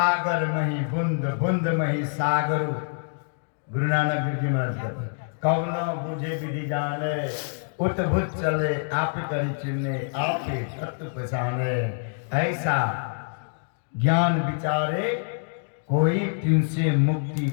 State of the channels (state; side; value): silent; right; digital silence